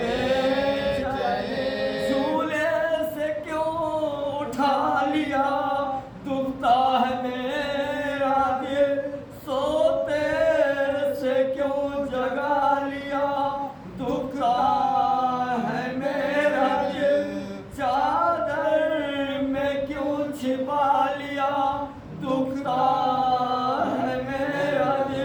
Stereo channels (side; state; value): both; identical; correlation 1.00